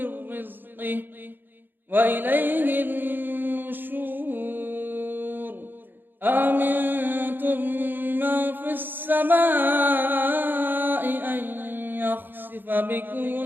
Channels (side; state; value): left; late; 0.093 ms